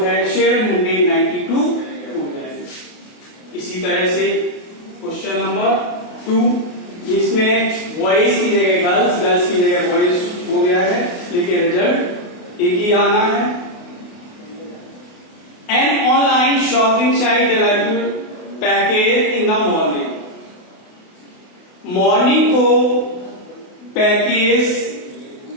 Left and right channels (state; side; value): late; right; 28 ms